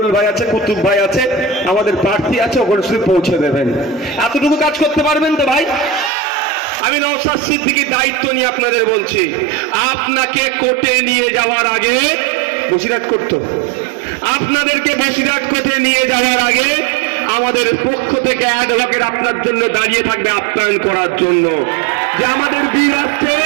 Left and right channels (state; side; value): drops out; left; at 6.1 s